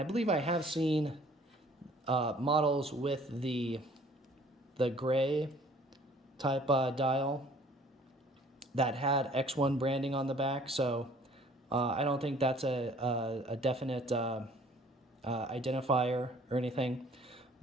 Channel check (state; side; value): normal; both; correlation 0.55